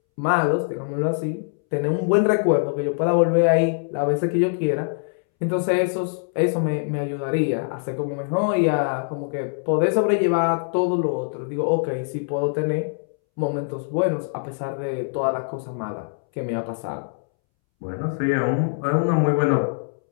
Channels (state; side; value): silent; right; 63 dB below the other